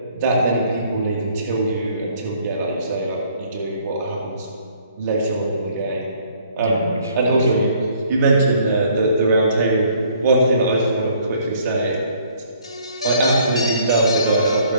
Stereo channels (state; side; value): inverted; both; correlation -0.61